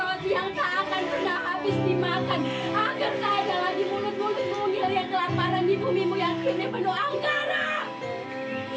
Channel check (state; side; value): identical; both; correlation 1.00